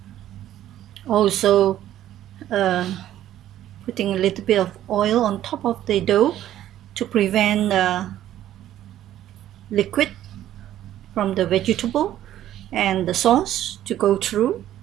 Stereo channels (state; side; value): quieter; left; 12.4 dB